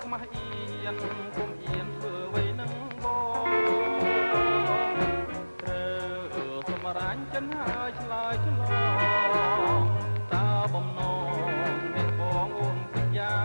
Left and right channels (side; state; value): both; inverted; correlation -1.00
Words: ខ្មាស់អៀនកុំអៀនធ្វើអ្វីនឹងបងត្រូវសម្រាញ់ចិនហើយឆ្លើយឆ្លងតើបំណងអ្នកបងអូនគិតយ៉ា